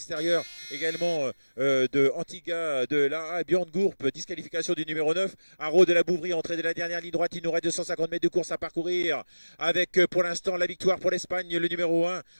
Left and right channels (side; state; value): both; inverted; correlation -1.00